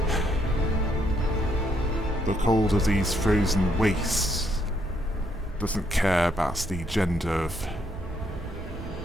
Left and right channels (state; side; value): normal; both; correlation 0.74